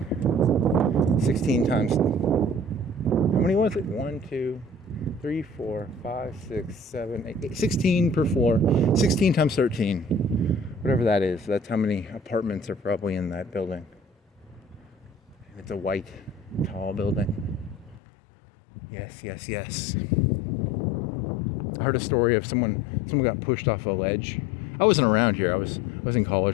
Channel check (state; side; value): drops out; right; at 18.0 s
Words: 16 times. How many was it? 1, 2, 3, 4, 5, 6, 7, 8, 16 per floor. 16 times 13. Whatever that is. That's how many apartments are probably in that building. It's a white, tall building. Yes, yes, yes. I heard a story of someone got pushed off a ledge. I wasn't around here. I was in